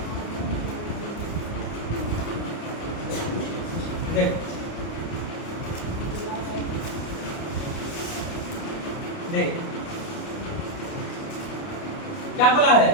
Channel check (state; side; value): late; right; 29 ms